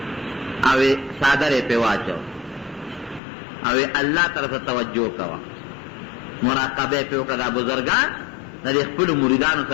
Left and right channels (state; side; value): drops out; right; at 3.2 s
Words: او څادر یې پرې واچو او الله طرف ته توجه کوه، مراقبه یې پرې وکړه. دا بزرګان د دې خپلو مریدانو